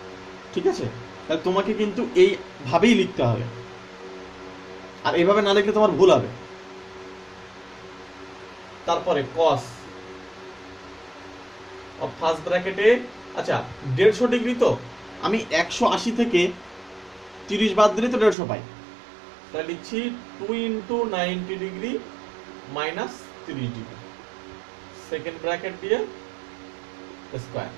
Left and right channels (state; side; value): drops out; left; at 18.4 s